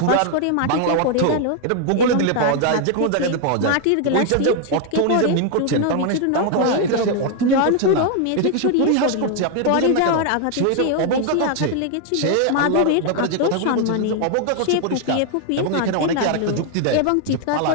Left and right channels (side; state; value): both; different; correlation 0.00